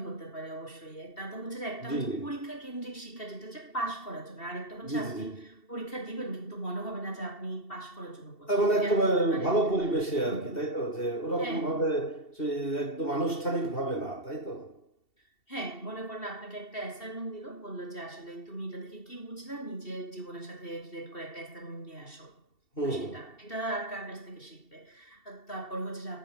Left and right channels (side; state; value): right; late; 2.7 ms